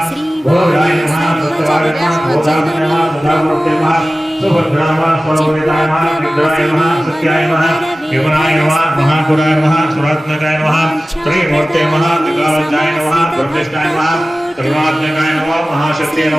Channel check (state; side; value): normal; both; correlation 0.96